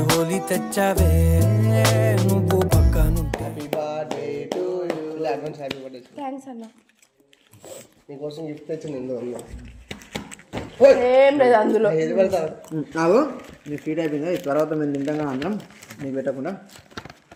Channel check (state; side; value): identical; both; correlation 1.00